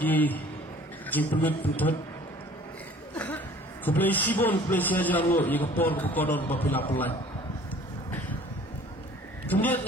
jipulut putot Kublai sibon, kublai siajar lo, ia kapor kodon bapila pelai. Kemudian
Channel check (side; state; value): both; normal; correlation 0.50